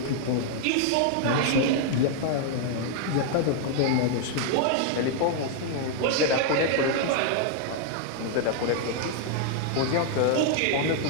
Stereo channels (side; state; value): both; different; correlation 0.00